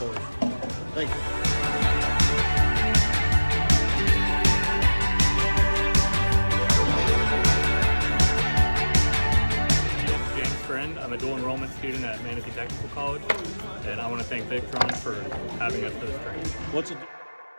us. Thank you. James Friend. I'm a dual enrollment student at Manatee Technical College, and I want to thank Victron for having us for this training. What's it?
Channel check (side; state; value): both; inverted; correlation -1.00